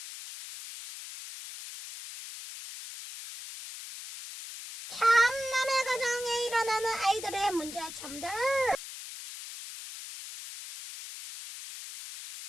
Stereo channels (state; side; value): noise; left; hiss, 11 dB below the sound